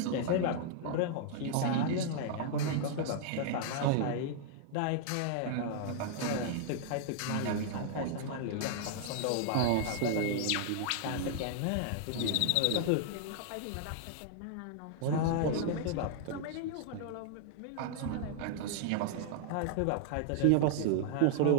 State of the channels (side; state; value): both; different; correlation -0.01